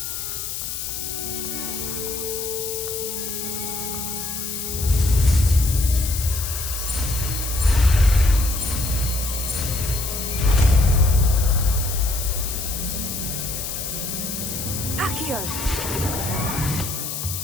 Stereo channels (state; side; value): noise; left; hiss, 5 dB below the sound